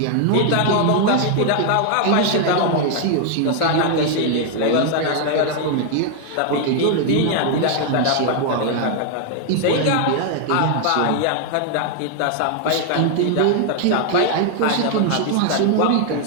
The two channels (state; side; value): different; both; correlation 0.00